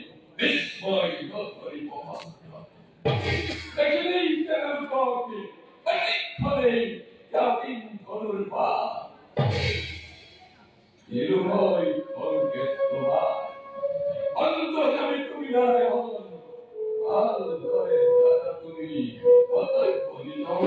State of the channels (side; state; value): both; identical; correlation 1.00